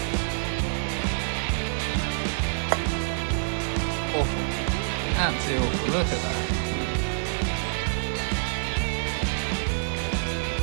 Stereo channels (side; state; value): left; silent; digital silence